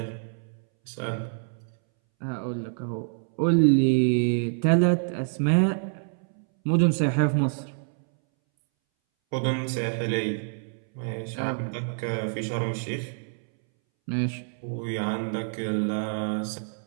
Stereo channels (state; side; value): silent; left; 60 dB below the other